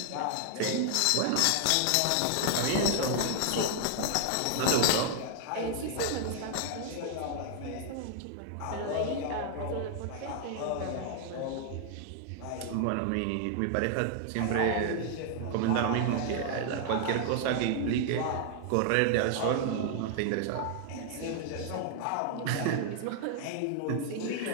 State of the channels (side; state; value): both; different; correlation 0.00